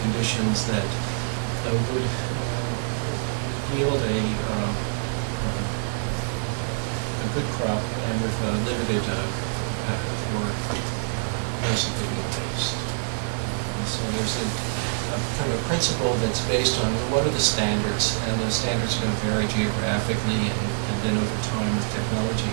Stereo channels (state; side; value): silent; left; digital silence